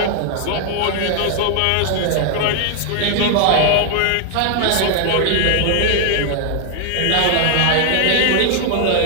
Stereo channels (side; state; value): both; different; correlation 0.00